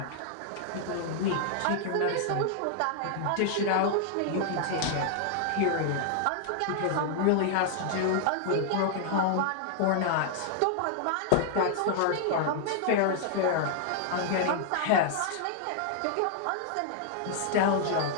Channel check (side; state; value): both; different; correlation 0.00